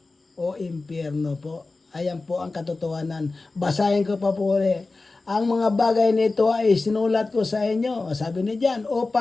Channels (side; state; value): right; quieter; 3.5 dB